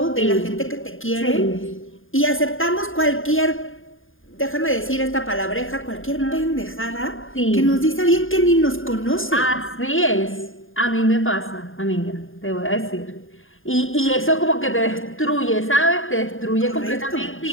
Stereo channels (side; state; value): right; late; 0.59 ms